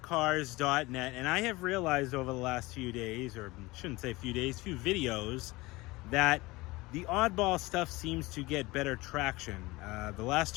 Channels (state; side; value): quieter; right; 21.5 dB